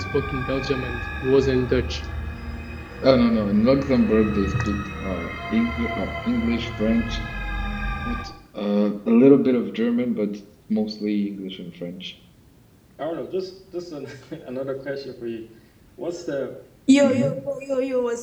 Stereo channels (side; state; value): both; identical; correlation 1.00